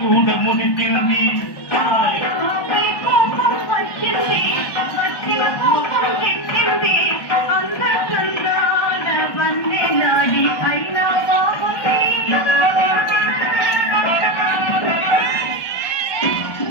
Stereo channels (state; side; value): late; right; 1.2 ms